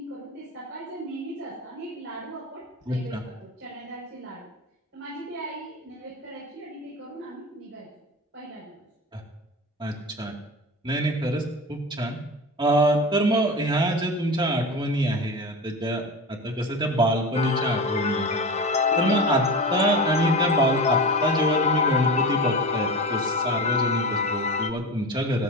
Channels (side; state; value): both; normal; correlation 0.27